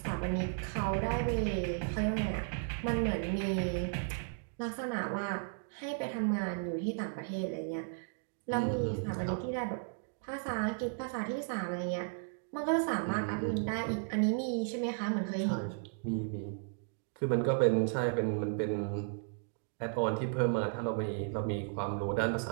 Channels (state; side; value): silent; left; digital silence